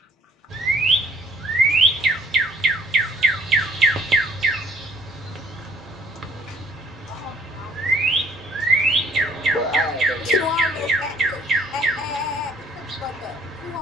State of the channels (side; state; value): both; normal; correlation 0.59